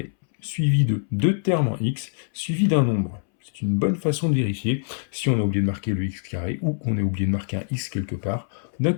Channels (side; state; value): right; silent; 62 dB below the other